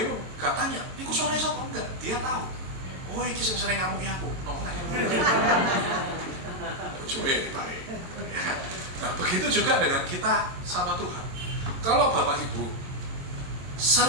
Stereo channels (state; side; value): late; left; 22 ms